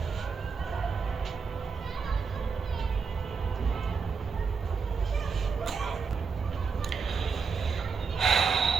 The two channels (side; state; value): left; quieter; 5.3 dB